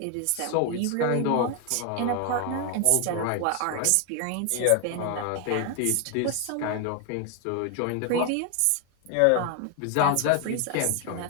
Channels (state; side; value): different; both; correlation 0.01